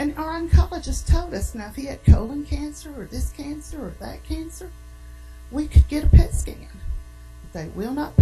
our oncologist told us, now if he had colon cancer or this cancer or that cancer, we could get a PET scan. They will not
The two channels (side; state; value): both; identical; correlation 1.00